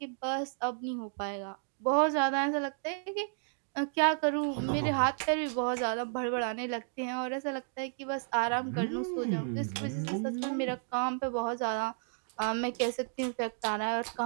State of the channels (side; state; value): left; silent; digital silence